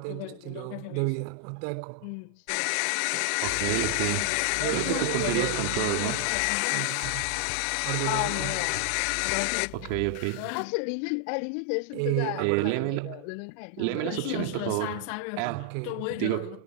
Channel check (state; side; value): different; both; correlation 0.00